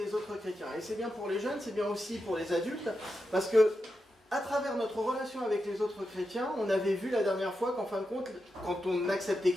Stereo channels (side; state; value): both; normal; correlation 0.88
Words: autres chrétiens. Et c'est bien pour les jeunes, c'est bien aussi pour les adultes, parce que à travers notre relation avec les autres chrétiens, on avait vu la dernière fois qu'en fin de compte, quand on acceptait